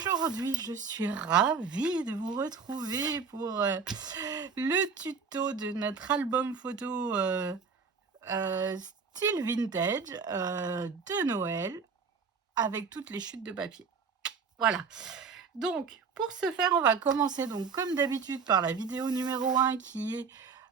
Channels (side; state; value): left; quieter; 5.5 dB